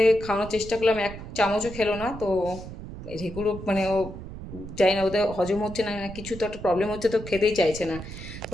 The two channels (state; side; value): noise; right; rumble, 11 dB below the sound